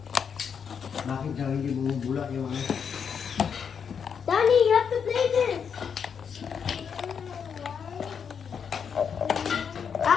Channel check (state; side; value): quieter; right; 7.0 dB